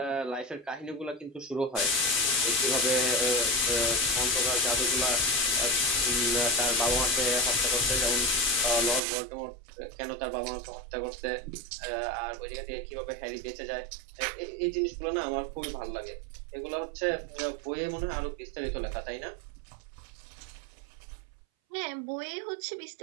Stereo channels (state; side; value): drops out; left; at 9.0 s